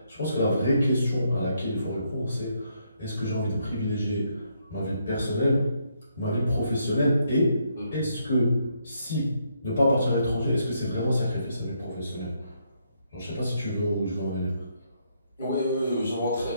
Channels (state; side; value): inverted; both; correlation -0.75